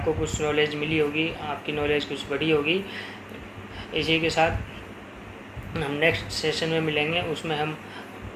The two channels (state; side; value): identical; both; correlation 1.00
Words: कुछ नॉलेज मिली होगी, आपकी नॉलेज कुछ बढ़ी होगी. इसी के साथ हम नेक्स्ट सेशन में मिलेंगे, उसमें हम